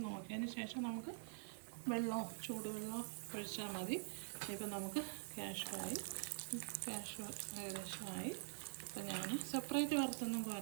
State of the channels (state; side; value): silent; left; digital silence